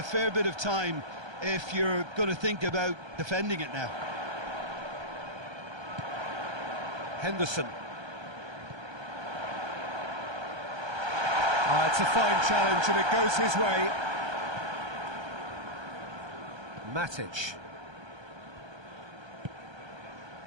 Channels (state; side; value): late; left; 1.3 ms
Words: fair bit of time if you're going to think about defending it now. Henderson. It's a fine challenge and it goes his way. Matic.